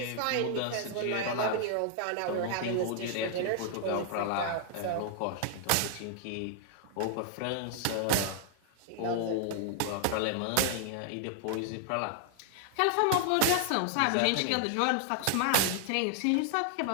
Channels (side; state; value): both; different; correlation 0.00